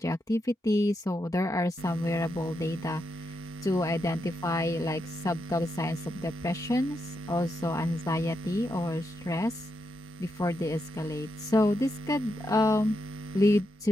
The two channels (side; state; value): both; normal; correlation 0.83